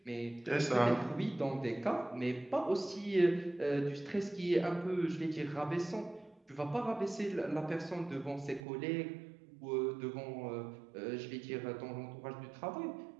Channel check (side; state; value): left; drops out; at 8.6 s